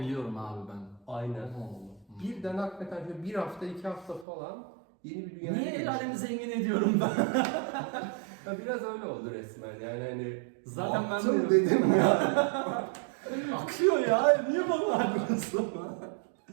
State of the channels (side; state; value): left; drops out; at 4.2 s